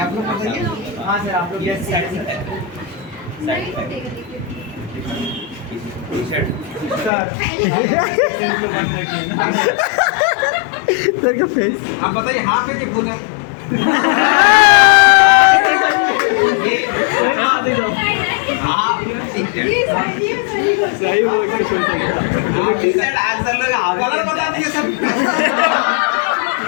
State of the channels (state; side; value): drops out; right; at 7.1 s